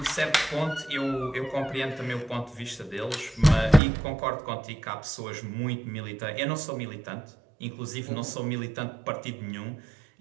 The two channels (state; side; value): drops out; left; at 3.8 s